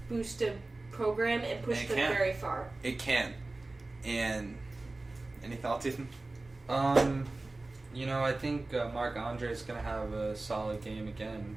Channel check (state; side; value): quieter; left; 3.1 dB